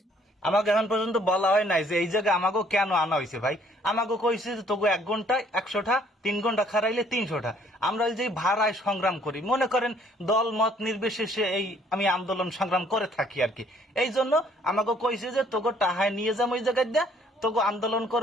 আমাকে এখন পর্যন্ত বলা হয় নাই যে এই জায়গায় আমাকে কেন আনা হয়েছে। ভাই আমাকে কইছে যে তোকে 1 ঘন্টায় 100টা, 3 ঘন্টা খারাইলে 300টা। আমরা ওই যে ভাড়ায় সংগ্রাম করি, মনে করেন দল মত নির্বিশেষে এই আমি আন্দোলন সংগ্রাম করে থাকি আর কি। এই জন্য আমাকে কইছে যে তোকে টাহায় নিয়ে যাবো ওই জায়গায় দিয়া, তোকে আন্দোলন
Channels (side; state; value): both; normal; correlation 0.62